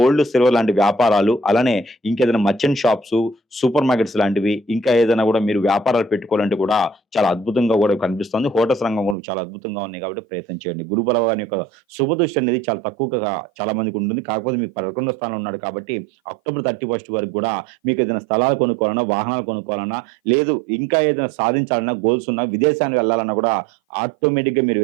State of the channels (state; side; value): drops out; left; at 9.2 s